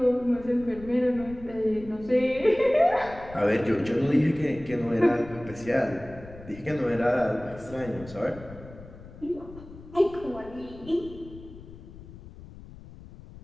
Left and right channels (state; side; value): noise; left; rumble, 17 dB below the sound